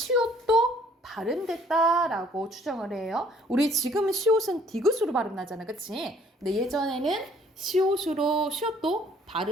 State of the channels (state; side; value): normal; both; correlation 0.60